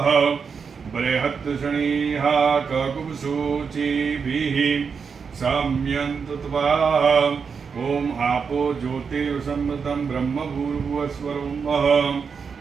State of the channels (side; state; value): left; quieter; 5.9 dB